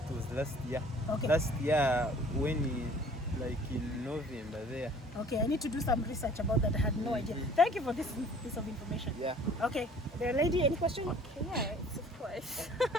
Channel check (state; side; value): normal; both; correlation 0.52